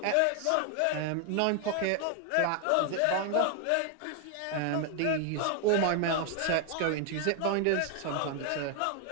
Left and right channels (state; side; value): different; both; correlation 0.00